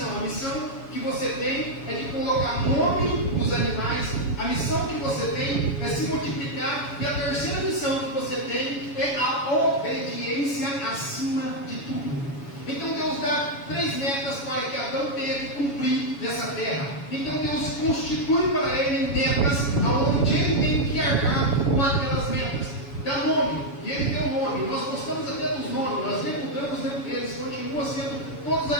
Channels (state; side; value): late; right; 7.1 ms